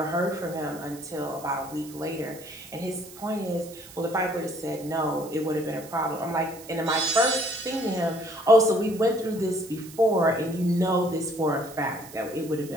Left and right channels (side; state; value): right; noise; hiss, 18 dB below the sound